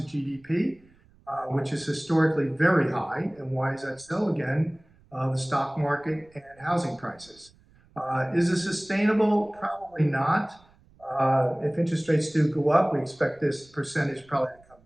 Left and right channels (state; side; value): noise; right; rumble, 30 dB below the sound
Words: the GDP, which is historically very high. And why is that so? Again, the stock market and housing prices. Is it sustainable? Probably not. If interest rates do go up, we expect this percentage probably to come